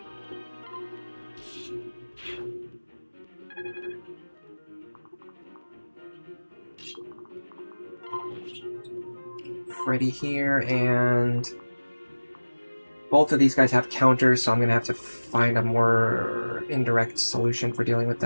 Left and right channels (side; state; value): both; inverted; correlation -1.00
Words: Freddy here, and both of these guys have counters, so I'm gonna have to find a more indirect solution for dealing with